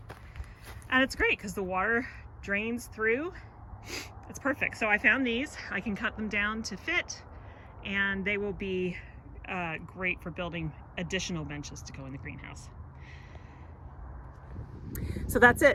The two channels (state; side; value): identical; both; correlation 1.00